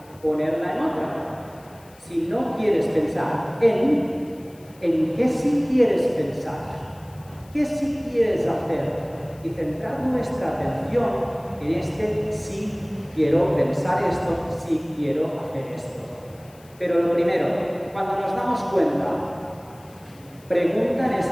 Ponerla en otra. Si no quieres pensar en qué sí quieres pensar. ¿Qué sí quieres hacer? Y centrar nuestra atención en este sí quiero pensar esto, sí quiero hacer esto. Pero lo primero, cuando nos damos cuenta, pregunta en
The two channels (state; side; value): noise; left; hiss, 27 dB below the sound